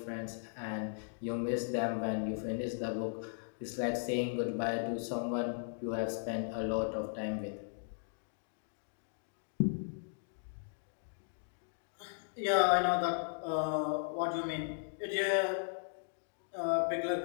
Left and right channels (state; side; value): silent; right; digital silence